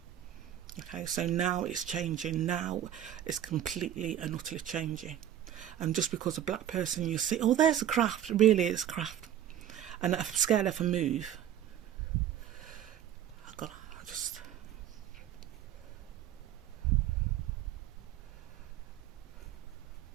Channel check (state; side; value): quieter; left; 11.0 dB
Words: Okay, so now it's changing. Now it's completely and utterly changing. And just because a black person, you see, oh, there's a craft. Really, it's craft. And I'm scared if I move.